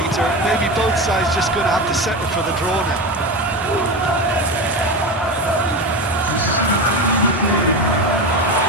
Maybe both sides just going to have to settle for the draw now.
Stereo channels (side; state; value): both; normal; correlation 0.21